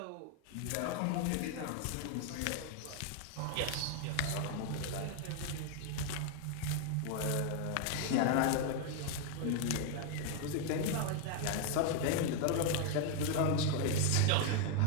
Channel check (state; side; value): different; both; correlation 0.01